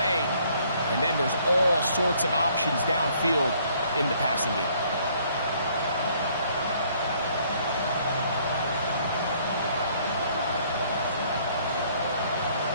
and then there's all sorts of options downfield in the passing game.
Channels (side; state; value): both; inverted; correlation -0.63